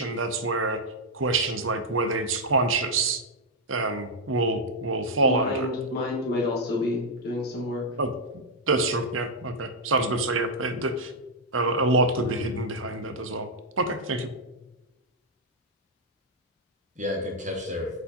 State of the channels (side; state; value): both; normal; correlation -0.02